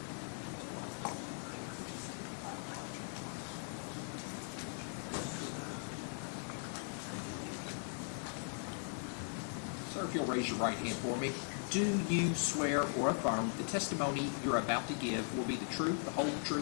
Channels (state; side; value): silent; right; 52 dB below the other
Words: Sir, if you'll raise your right hand for me. Do you swear or affirm the testimony you're about to give will be the truth, the whole